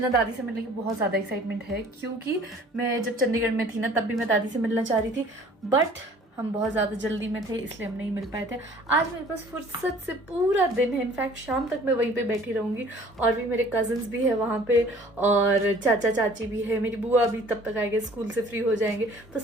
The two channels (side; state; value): both; normal; correlation 0.52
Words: दादी से मिलने की बहुत ज्यादा एक्साइटमेंट है क्योंकि मैं जब चंडीगढ़ में थी ना तब भी मैं दादी से मिलना चाह रही थी, बट हम बहुत ज़्यादा जल्दी में थे इसलिए हम नहीं मिल पाए थे। आज मेरे पास फुर्सत से पूरा दिन है, इनफैक्ट शाम तक मैं वहीं पे बैठी रहूँगी। और भी मेरे कज़न्स भी है वहाँ पे और चाचा चाची भी है, मेरी बुआ भी तब तक आएंगे, स्कूल से फ्री हो जाएंगे, तो